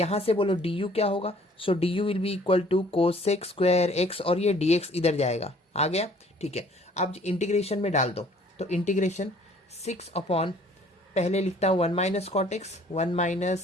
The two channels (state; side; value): normal; both; correlation 0.56